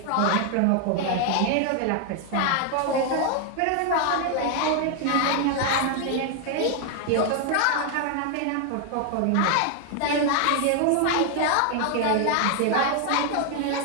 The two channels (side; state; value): both; different; correlation 0.00